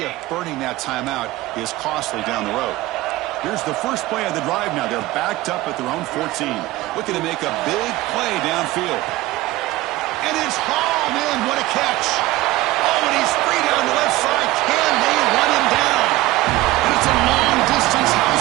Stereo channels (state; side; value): quieter; left; 17.7 dB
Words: if burning that timeout is costly down the road. Here's the first play of the drive now. They're backed up at their own 14. Looking to make a big play downfield. And it's hauled in. What a catch. Oh, and he's free down the left side. Can they run him down? And it's a long-distance